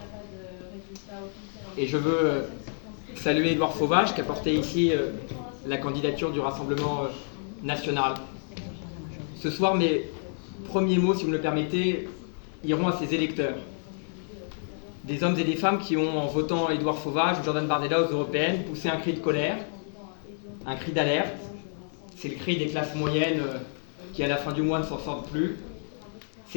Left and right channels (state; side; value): silent; right; digital silence